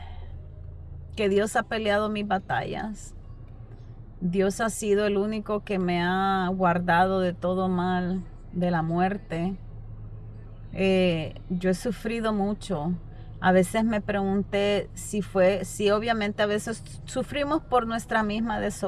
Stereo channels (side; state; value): both; identical; correlation 1.00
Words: Dios ha peleado mis batallas. Dios ha sido el único que me ha guardado de todo mal, de la muerte. Yo he sufrido mucho. A veces me pregunté si obviamente a veces sufrimos por nuestra misma